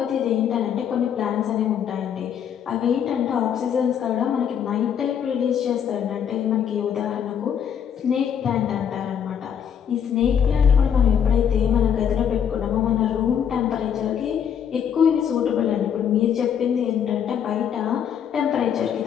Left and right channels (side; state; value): right; quieter; 8.3 dB